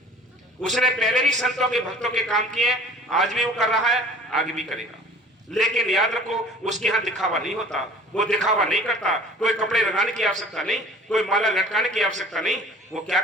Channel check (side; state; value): both; normal; correlation 0.47